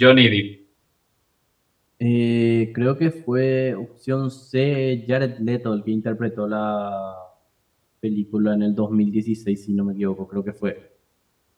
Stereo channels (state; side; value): identical; both; correlation 1.00